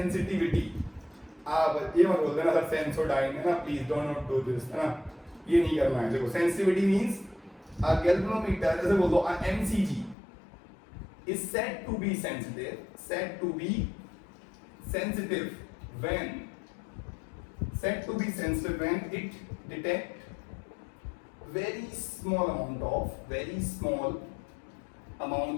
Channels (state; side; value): drops out; right; at 10.2 s